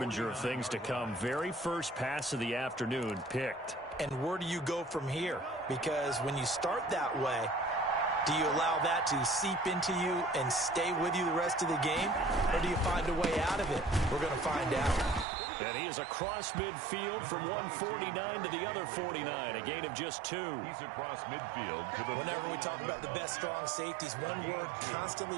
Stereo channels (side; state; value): left; drops out; at 15.2 s